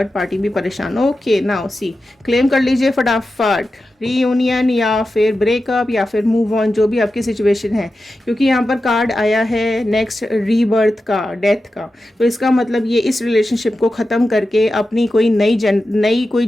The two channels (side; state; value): both; normal; correlation 0.92